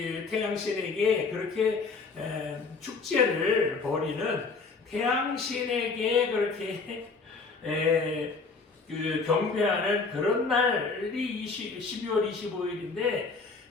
태양신에게 그렇게 축제를 벌이는, 태양신에게 그렇게 경배하는 그런 날이 12월 25일인데,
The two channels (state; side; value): quieter; right; 4.4 dB